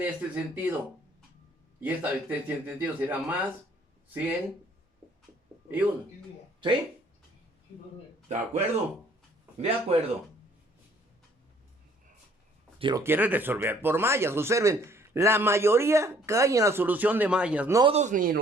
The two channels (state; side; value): normal; both; correlation 0.60